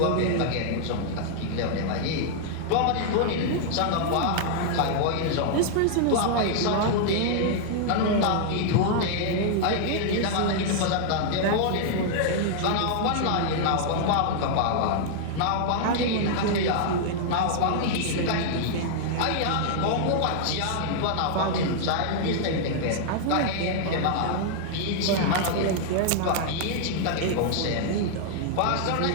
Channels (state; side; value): different; both; correlation -0.01